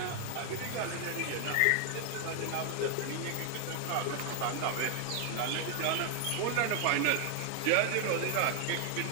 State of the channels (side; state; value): both; different; correlation 0.00